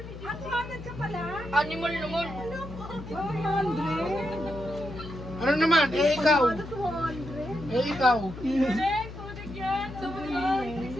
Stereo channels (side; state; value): left; noise; hum, 11 dB below the sound